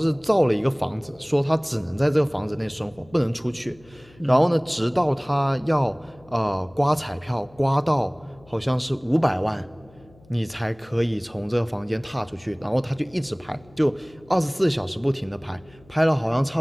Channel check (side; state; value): left; noise; hum, 26 dB below the sound